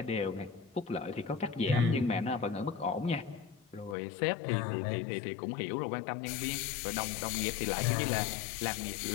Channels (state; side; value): drops out; right; at 4.0 s